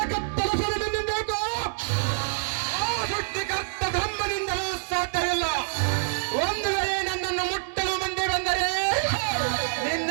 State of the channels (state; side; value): silent; left; 61 dB below the other